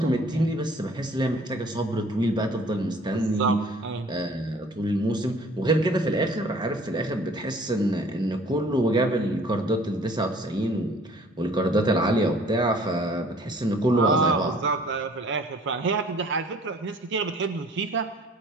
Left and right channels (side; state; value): both; normal; correlation 0.54